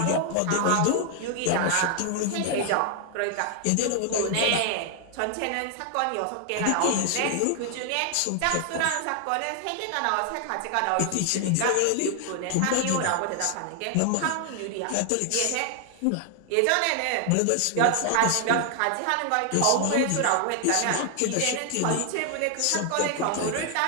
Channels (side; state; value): both; different; correlation 0.00